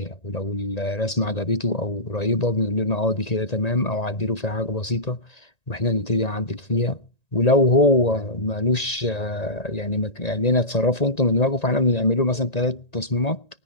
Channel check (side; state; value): right; late; 1.9 ms